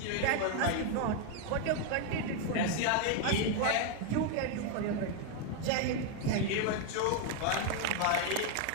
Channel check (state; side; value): different; both; correlation 0.01